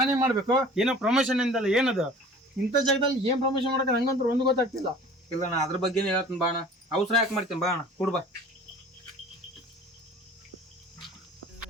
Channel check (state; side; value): normal; both; correlation 0.45